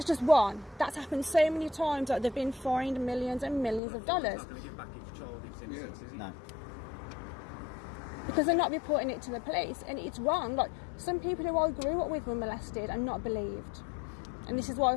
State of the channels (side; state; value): right; drops out; at 3.8 s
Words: just one. That's happened so many times that they've been fined millions and millions of dollars. It's not going to give back each child its innocence, is it? No. Because they're not reporting it to the police, and it's wrong. Like, some people who I grew up with were molested and not believed, and this is why I